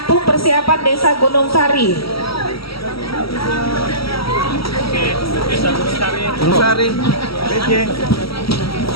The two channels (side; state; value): right; late; 0.75 ms